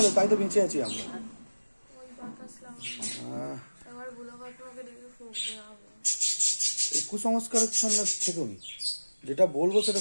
তাই তো বেঁচে আছি আমরা। এই কুসংস্কারের ছন্দ থেকেও নি, যেটা বলবো সেটা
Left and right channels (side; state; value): both; inverted; correlation -1.00